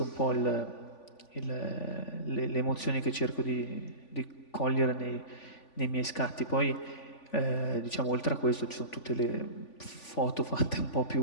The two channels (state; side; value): late; right; 3.5 ms